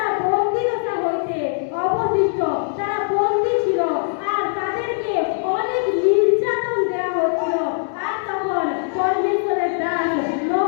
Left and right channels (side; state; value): right; silent; 65 dB below the other